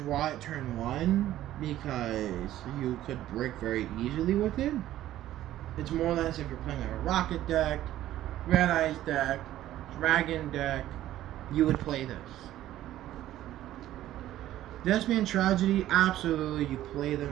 it turn 1 because you could break very easily with it. It's more or less if you're playing like a rocket deck, Red Eyes deck, Dragon deck, you would play this. Thespian Tragedy, absolutely, you play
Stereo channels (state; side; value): quieter; left; 13.5 dB